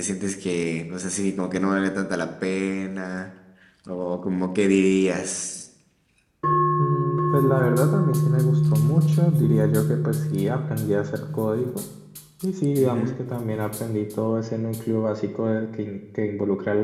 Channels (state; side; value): identical; both; correlation 1.00